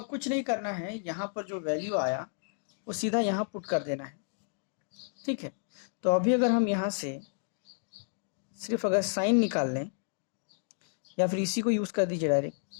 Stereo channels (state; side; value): silent; right; digital silence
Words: कुछ नहीं करना है, यहाँ पर जो वैल्यू आया वो सीधा यहाँ पुट कर देना है। ठीक है, तो अभी अगर हम यहाँ से सिर्फ अगर साइन निकाल लें या फिर इसी को यूज़ कर दीजिए डायरेक्ट,